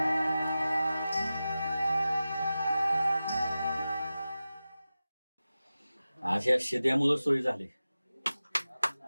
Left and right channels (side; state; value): both; inverted; correlation -0.94